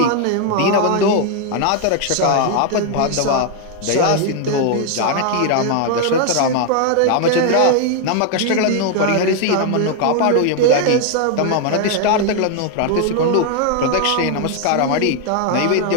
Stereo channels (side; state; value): both; different; correlation 0.00